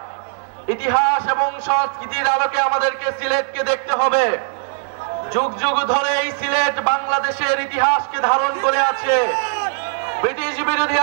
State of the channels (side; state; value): left; silent; digital silence